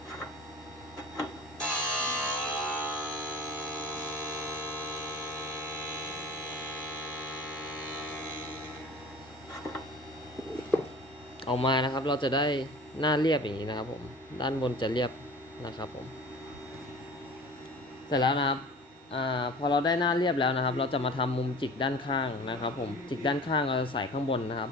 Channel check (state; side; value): normal; both; correlation 0.42